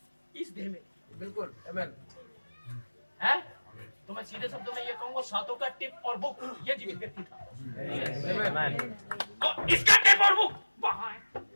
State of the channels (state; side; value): inverted; both; correlation -1.00